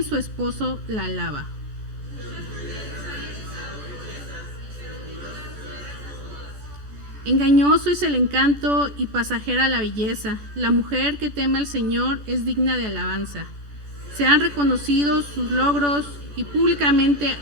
su esposo la alaba. Engañoso es el encanto y pasajera la belleza. La mujer que teme al Señor es digna de alabanza. Sean reconocidos sus logros y públicamente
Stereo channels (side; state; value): left; late; 14 ms